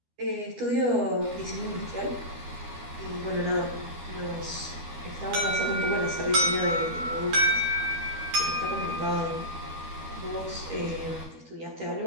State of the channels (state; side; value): late; left; 13 ms